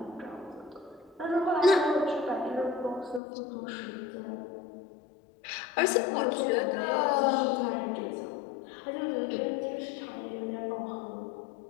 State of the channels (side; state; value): right; drops out; at 3.2 s